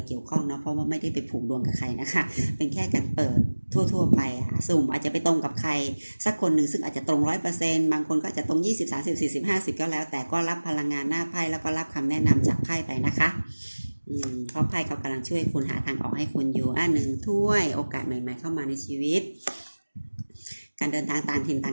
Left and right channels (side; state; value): both; inverted; correlation -1.00